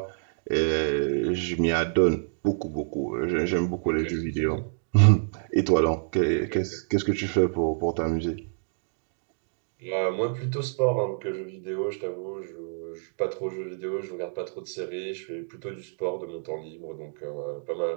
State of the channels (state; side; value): silent; left; digital silence